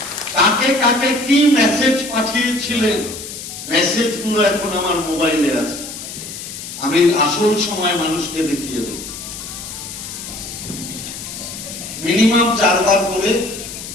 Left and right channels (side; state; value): left; noise; hiss, 10 dB below the sound